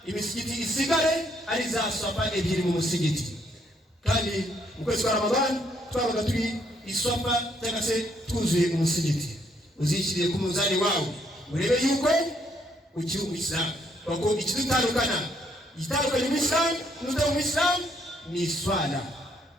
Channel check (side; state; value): both; normal; correlation 0.71